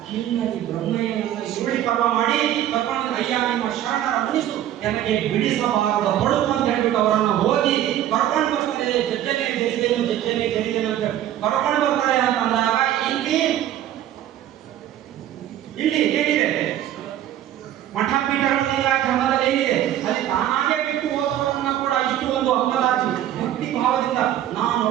ಹಿನ್ನಡಿ ಬ್ರಹ್ಮಯ್ಯನನ್ನ ಸುರುಳಿ ಪರ್ವ ಮಾಡಿ ಕರ್ಕೊಂಡು, ಅಯ್ಯ ನಿಮ್ಮ ಶರಣರ ಮುನಿಸು ನನಗೆ ಬಿಡಿಸಬಾರದ ಹೊಳಪು ಅಂತ ಹೇಳ್ಬಿಟ್ಟು ಅವರನ್ನ ಹೋಗಿ ಕರ್ಕೊಂಡು ಬರ್ತಾರೆ. ಜಜ್ಜನೆ ಜರಿದೇನು ಅಂತ ಕರ್ಕೊಂಡು ಬರ್ತಾರೆ ಅಂತ ಅಂದಾಗ ಇಲ್ಲಿ ಏನಿದೆ? ಮಠ ಪೀಠಗಳ ಕ್ರಮದಲ್ಲಿ ಏನಿದೆ? ಅಲ್ಲಿ ತಾನಾಗೆ ಬಿಟ್ಟು ಹೋದವರನ್ನ ಕೂಡ ಇಷ್ಟು ಒಂದು ಅಂಗಲಾಚಿ ಭಕ್ತಿ ಭಾವದಿಂದ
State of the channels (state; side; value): quieter; left; 11.9 dB